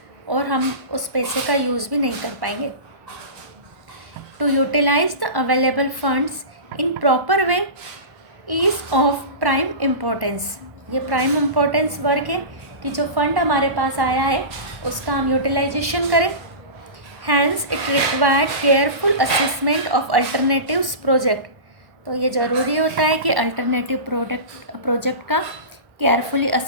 और हम उस पैसे का यूज़ भी नहीं कर पाएंगे। To utilize the available funds in proper way is of prime importance. ये प्राइम इम्पोर्टेंस वर्क है कि जो फंड हमारे पास आया है उसका हम यूटिलाइजेशन करें। Hence it required careful assessment of alternatives project. तो ये ज़रूरी होता है कि अल्टरनेटिव प्रोजेक्ट का केयरफुली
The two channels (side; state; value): left; late; 1.1 ms